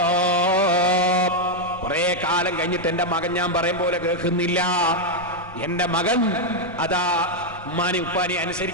കുറെ കാലം കഴിഞ്ഞിട്ട് എന്റെ മകൻ ഞാൻ പറയും പോലെ കേൾക്കുന്നില്ല, എന്റെ മകൻ അതാ ഉമ്മാനി ഉപ്പാനി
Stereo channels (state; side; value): normal; both; correlation 0.00